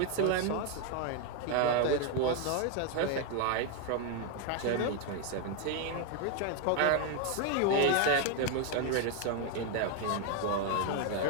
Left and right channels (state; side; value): different; both; correlation 0.01